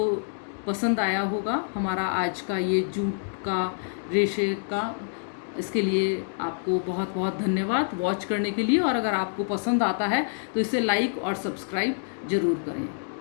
पसंद आया होगा हमारा आज का ये जूट का रेशे का। इसके लिए आपको बहुत बहुत धन्यवाद वॉच करने के लिए, और अगर आपको पसंद आता है तो इसे लाइक और सब्सक्राइब ज़रूर करें।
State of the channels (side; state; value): right; silent; digital silence